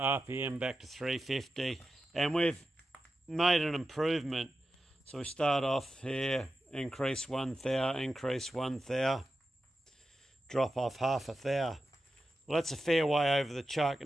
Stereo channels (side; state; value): both; normal; correlation 0.91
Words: RPM back to 350, and we've made an improvement. So we start off here, increase 1 thou, increase 1 thou, drop off half a thou. Well, that's a fair way over the chuck,